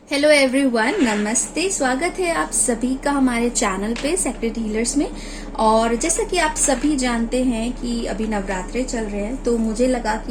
Hello everyone, नमस्ते। स्वागत है आप सभी का हमारे चैनल पे सेक्रेट हीलर्स में। और जैसा कि आप सभी जानते हैं कि अभी नवरात्रे चल रहे हैं, तो मुझे लगा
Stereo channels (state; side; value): identical; both; correlation 1.00